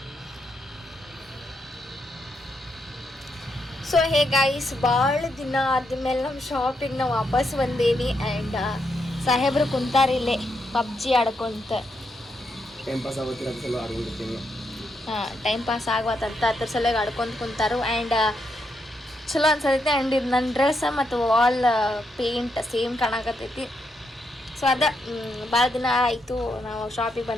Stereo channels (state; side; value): normal; both; correlation 0.80